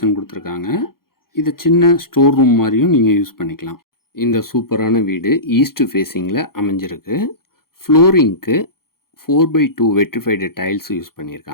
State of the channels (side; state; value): right; late; 0.93 ms